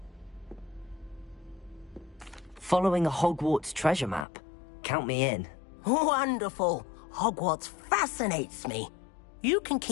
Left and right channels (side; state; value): right; drops out; at 4.2 s